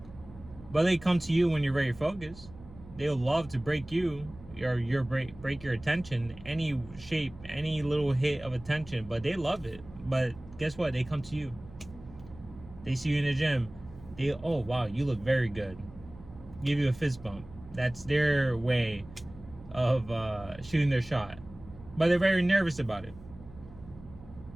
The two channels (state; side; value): noise; right; hum, 19 dB below the sound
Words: But they come to you when you're very focused. They'll love to break you, or break your attention, any shape, any little hit of attention, but they love it. But guess what? They come to you. They see you in the gym. Oh wow, you look very good. Give you a fist bump. That's their way of shooting their shot. But they're very nervous about it.